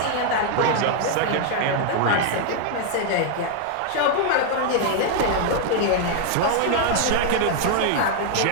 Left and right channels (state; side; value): different; both; correlation 0.00